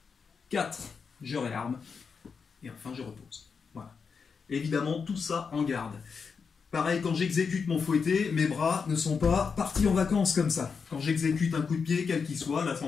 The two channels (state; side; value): quieter; right; 5.6 dB